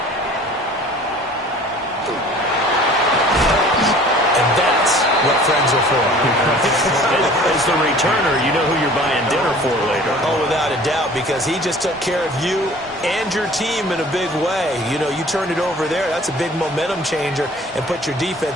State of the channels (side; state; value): both; normal; correlation 0.48